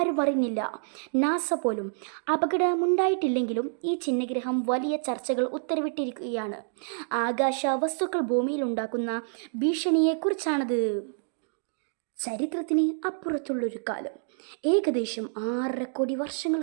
അറിഞ്ഞില്ല, നാസ പോലും. അപകടമുണ്ടായിട്ടില്ലെങ്കിലും ഈ ചിഹ്നഗ്രഹം വലിയ ചർച്ചകൾ ഉത്തരവിട്ടിരിക്കുകയാണ്. ആകാശ വസ്തുക്കൾ ഭൂമിയിലുണ്ടാക്കുന്ന ഭീഷണിയെക്കുറിച്ചാണത്. ചരിത്രത്തിന് അപ്പുറത്തുള്ളൊരു കാലം, ഏകദേശം 6.5 കോടി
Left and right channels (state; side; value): silent; left; digital silence